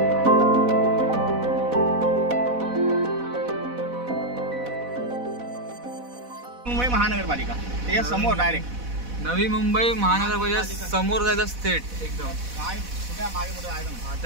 मुंबई महानगरपालिका त्याच्या समोर डायरेक्ट नवी मुंबई महानगरपालिका समोर जायचं स्टेट एकदम काय कुठे मागे पुढे आहे ना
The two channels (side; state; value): left; late; 4.1 ms